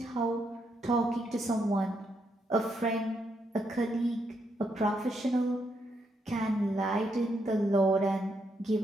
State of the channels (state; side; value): normal; both; correlation 0.78